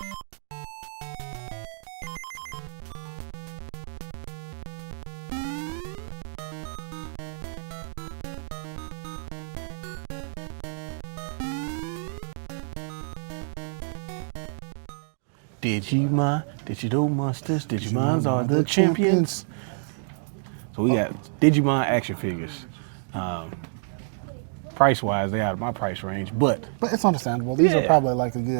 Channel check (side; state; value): left; silent; digital silence